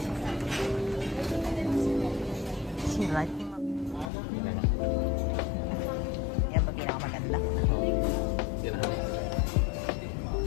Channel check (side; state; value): right; drops out; at 4.1 s